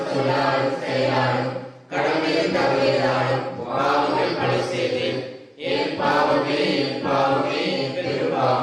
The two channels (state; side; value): identical; both; correlation 1.00